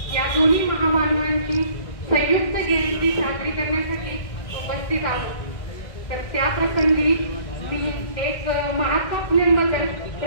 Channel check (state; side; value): late; right; 1.6 ms